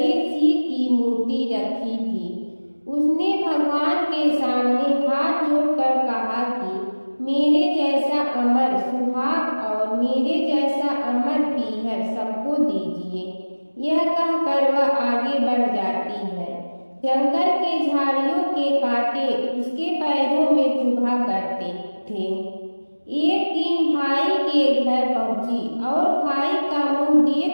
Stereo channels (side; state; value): both; inverted; correlation -1.00